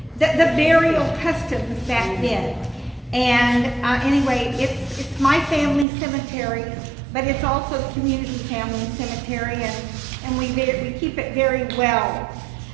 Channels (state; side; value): drops out; left; at 5.9 s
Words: burial customs back then. And anyway, it's my family cemetery, but it's also the community family cemetery, and we keep it very well.